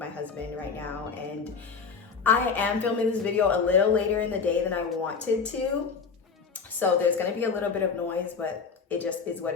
husband right now. And I am filming this video a little later in the day than I wanted to, so there's gonna be a little bit of noise, but it just is what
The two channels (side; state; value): right; quieter; 5.5 dB